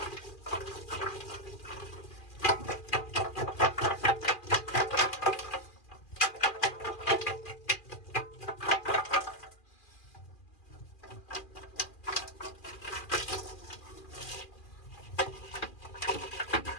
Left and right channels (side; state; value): right; late; 2.4 ms